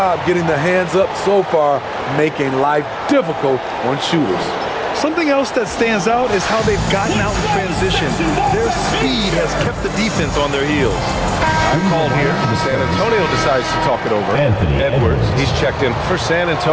getting the hands up so far, making life difficult on shooters. Something else that stands out is how they've gotten out in transition. Their speed has kept the defense on their heels. I'm called here. San Antonio decides to talk it over. Edwards, he's checked in for San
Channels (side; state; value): both; identical; correlation 1.00